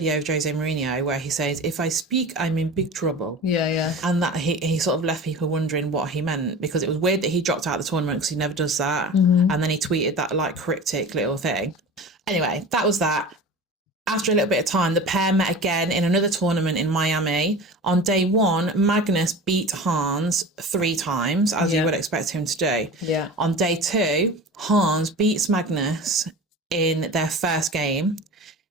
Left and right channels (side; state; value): both; normal; correlation 0.34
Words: of Jose Mourinho where he says, "If I speak, I'm in big trouble." Yeah. And that he sort of left people wondering what he meant, because it was weird that he dropped out of the tournament because he never does that. And then he tweeted that like cryptic little thing. Anyway, that was that. After a little bit of time, the pair met again in another tournament in Miami. On day one, Magnus beat Hans 3 times, as you would expect him to do. Yeah. On day 2, Hans beats Magnus in their first game